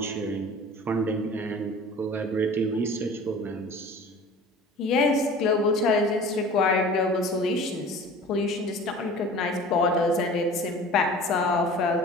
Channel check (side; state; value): both; normal; correlation 0.42